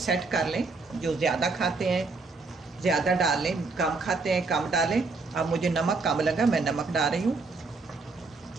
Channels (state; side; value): quieter; left; 4.0 dB